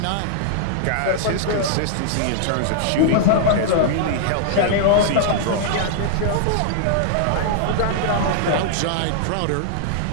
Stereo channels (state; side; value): different; both; correlation -0.01